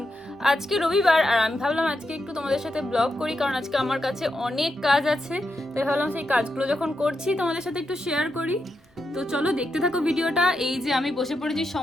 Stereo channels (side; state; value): both; normal; correlation 0.85